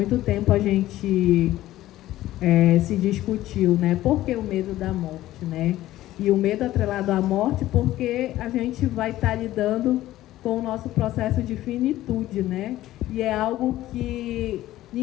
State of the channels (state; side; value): quieter; right; 15.0 dB